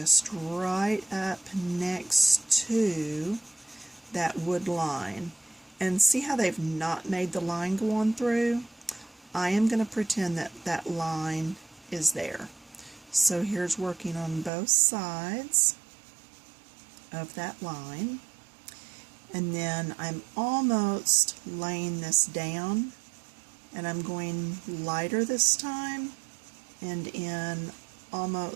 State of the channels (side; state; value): left; drops out; at 14.5 s